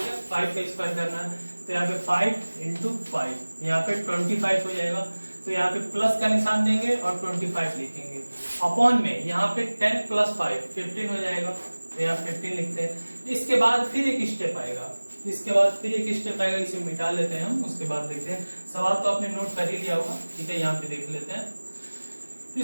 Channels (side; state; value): both; inverted; correlation -1.00